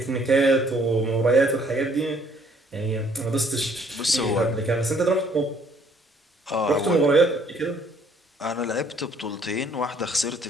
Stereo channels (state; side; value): normal; both; correlation 0.63